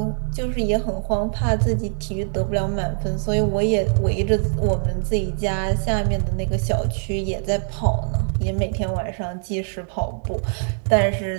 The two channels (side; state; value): left; silent; digital silence